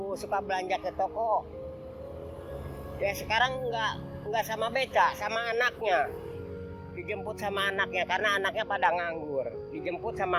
suka belanja ke toko, ya sekarang nggak sama beca, sama anaknya. Dijemput sama anaknya karena anaknya pada nganggur, dijemput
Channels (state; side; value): identical; both; correlation 1.00